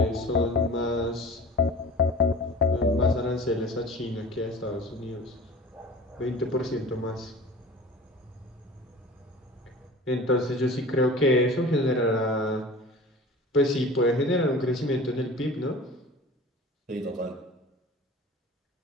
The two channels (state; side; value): normal; both; correlation 0.40